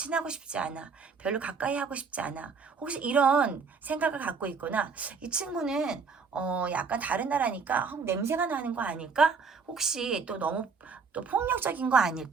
싶지 않아, 별로 가까이 하고 싶지 않아, 혹시 이런 생각을 갖고 있거나, 이 친구는 약간 다른 나라니까 냄새가 나는 거 아닐까, 혹시 또 너무 또 폭력적인 거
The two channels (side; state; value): left; quieter; 5.2 dB